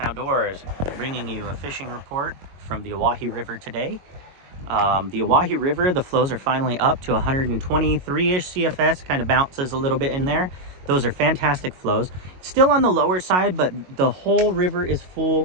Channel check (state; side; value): late; left; 22 ms